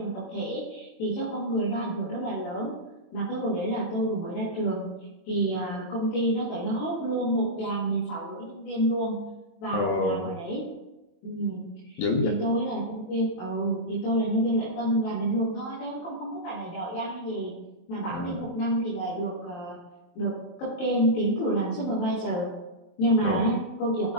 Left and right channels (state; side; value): late; right; 23 ms